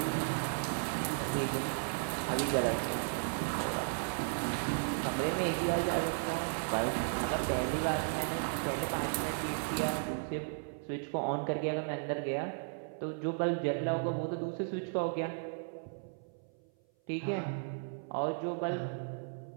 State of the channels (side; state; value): left; silent; 54 dB below the other